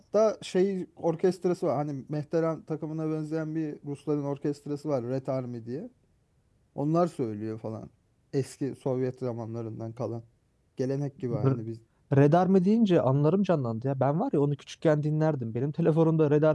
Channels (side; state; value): both; identical; correlation 1.00